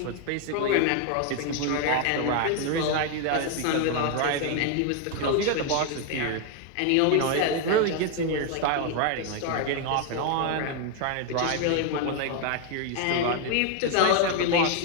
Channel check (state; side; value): different; both; correlation 0.01